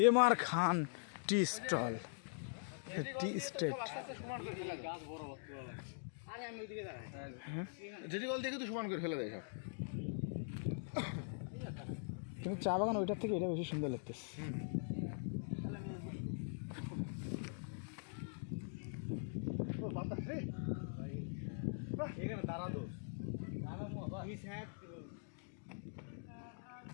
এমআর খান টি স্টল, টি স্টেট। যেটি বল দেখে তো সমান করে ফেলে দেয় সব। কিন্তু চা বাগান ওইটার থেকে এটা বেশি সুন্দর লাগতেছে।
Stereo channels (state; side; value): silent; right; digital silence